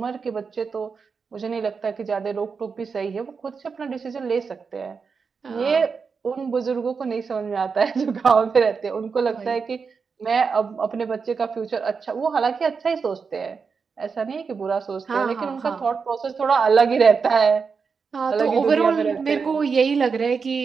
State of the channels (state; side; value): quieter; left; 5.4 dB